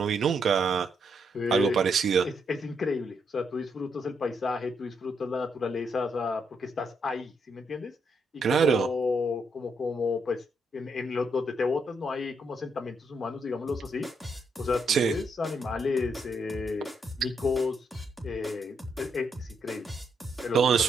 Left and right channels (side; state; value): both; normal; correlation 0.78